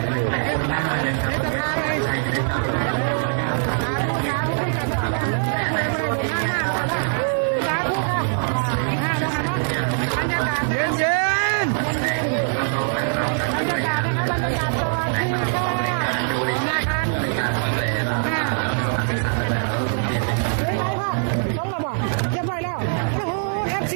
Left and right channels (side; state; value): left; silent; digital silence